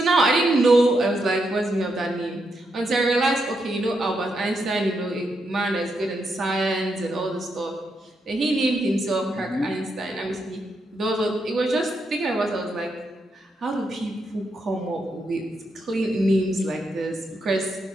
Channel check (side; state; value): both; normal; correlation 0.82